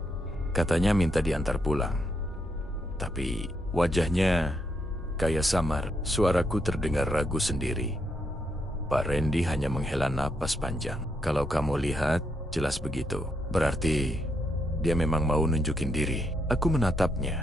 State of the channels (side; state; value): both; normal; correlation 0.78